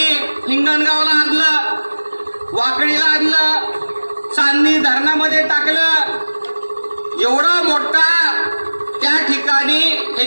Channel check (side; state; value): both; inverted; correlation -1.00